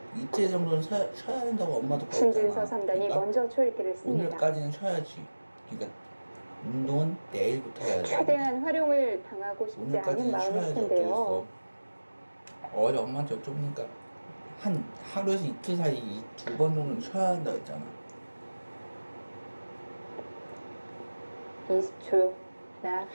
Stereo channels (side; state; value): both; inverted; correlation -1.00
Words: 이틀 정도는 쉬어야 된다고 엄마도 신진서 그랬잖아. 3단이 그러니까 먼저 초읽기를 씁니다. 오늘까지는 쉬어야지. 그러니까 운동은 내일부터 해야지. 최대한 활용을 당하고 싶지 않은 오늘까지는 마음일 쉬어야지. 텐데요. 어쩌겠어. 어제 엄마한테 여쭤보니까 한 하루에서 이틀 사이 2번 정도는 쉬어야 한다고 했잖아. 20초. 하나,